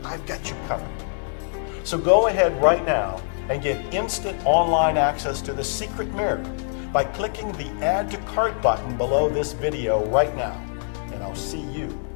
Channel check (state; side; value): silent; right; digital silence